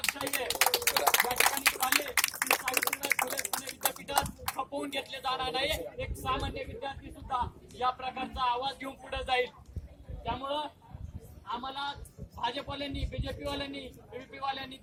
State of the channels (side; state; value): both; identical; correlation 1.00